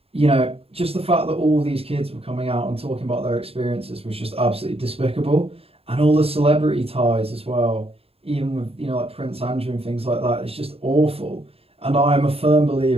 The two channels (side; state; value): left; late; 0.28 ms